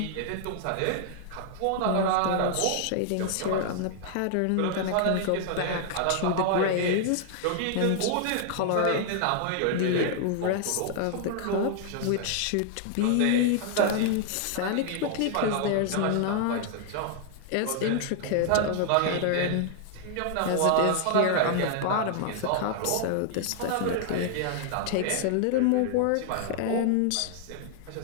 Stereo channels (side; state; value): both; different; correlation 0.00